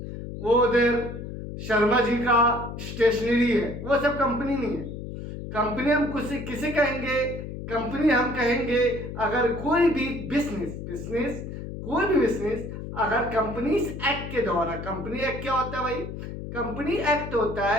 वो उधर शर्मा जी का स्टेशनरी है, वो सब कंपनी नहीं है। कंपनी हम किसे कहेंगे? कंपनी हम कहेंगे अगर कोई भी बिजनेस कोई भी बिजनेस अगर कंपनीज एक्ट के द्वारा। कंपनी एक्ट क्या होता है भाई? कंपनी एक्ट होता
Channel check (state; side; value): noise; left; hum, 8 dB below the sound